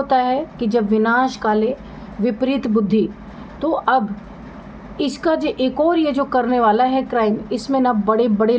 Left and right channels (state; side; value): identical; both; correlation 1.00